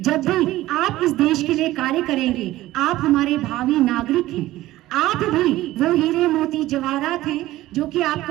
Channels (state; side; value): quieter; left; 16.2 dB